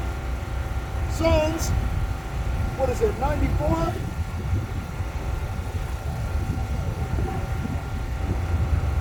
Psalms, what is it, 94?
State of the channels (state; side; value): identical; both; correlation 1.00